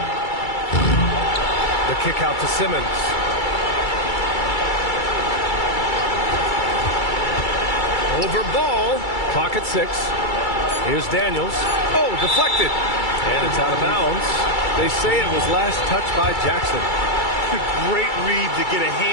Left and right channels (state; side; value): late; right; 2.3 ms